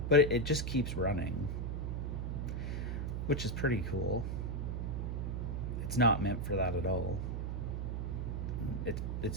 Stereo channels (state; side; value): noise; right; hum, 2 dB below the sound